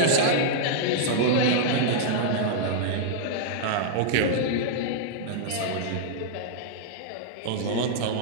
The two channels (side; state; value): both; different; correlation -0.02